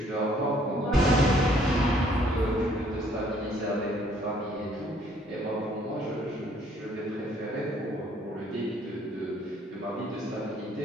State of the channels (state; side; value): normal; both; correlation 0.63